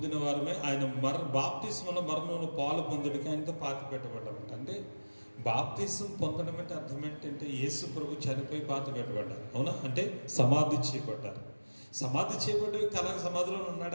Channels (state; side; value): inverted; both; correlation -1.00